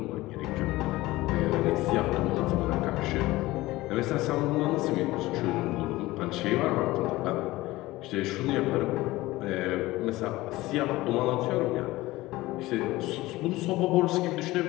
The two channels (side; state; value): right; quieter; 18.6 dB